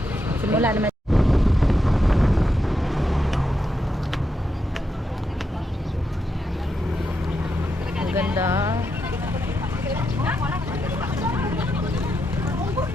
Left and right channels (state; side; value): normal; both; correlation 0.84